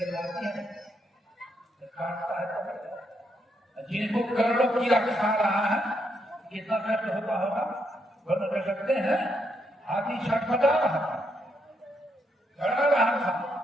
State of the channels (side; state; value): both; normal; correlation 0.78